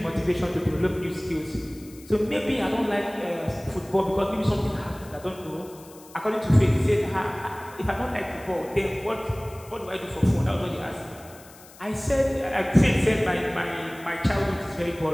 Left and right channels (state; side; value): noise; left; hiss, 22 dB below the sound